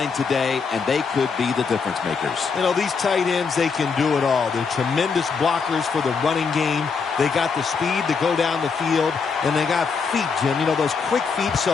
today, and they could be the difference makers. You know, these tight ends, they can do it all. They're tremendous blockers for the running game. They got the speed to go down the field, and they got feet, Jim. You know, those quick feet,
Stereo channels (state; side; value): quieter; right; 5.4 dB